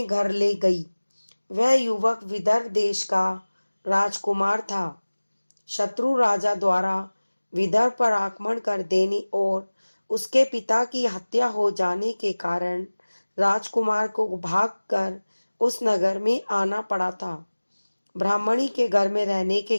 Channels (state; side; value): inverted; both; correlation -1.00